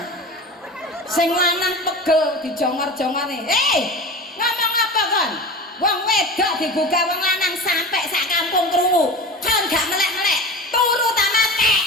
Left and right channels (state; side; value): normal; both; correlation 0.32